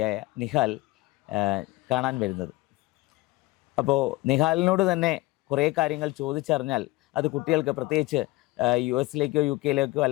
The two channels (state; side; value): quieter; right; 20.7 dB